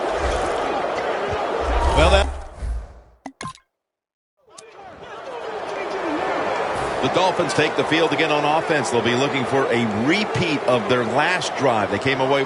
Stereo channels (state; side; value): identical; both; correlation 1.00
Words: Well, The Dolphins take the field again on offense. They'll be looking for a repeat of their last drive. They came away